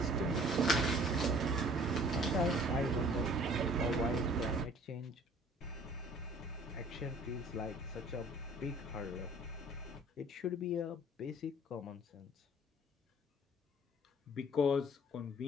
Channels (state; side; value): normal; both; correlation 0.52